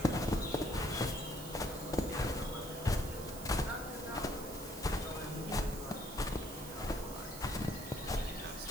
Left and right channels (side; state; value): right; noise; hiss, 12 dB below the sound